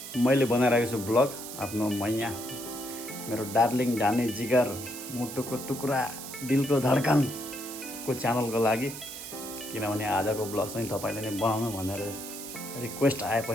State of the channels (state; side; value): noise; right; hiss, 10 dB below the sound